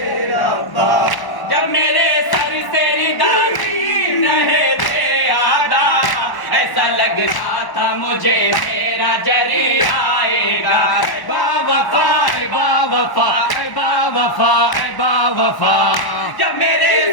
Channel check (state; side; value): late; right; 1.1 ms